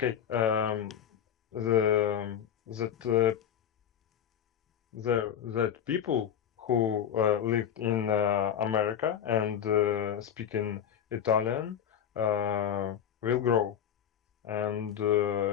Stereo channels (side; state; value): right; quieter; 9.1 dB